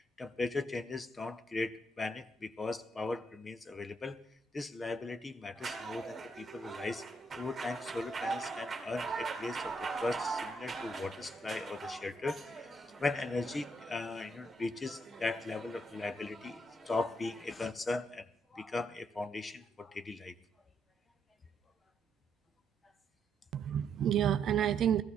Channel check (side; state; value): both; normal; correlation 0.76